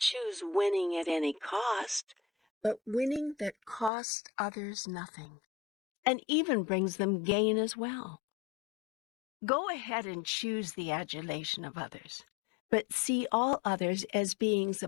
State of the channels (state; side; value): drops out; right; at 3.9 s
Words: winning at any cost, but winning that costs others nothing, and even brings them gain as well. Go ahead and choose the adulation of others, but see all others as beings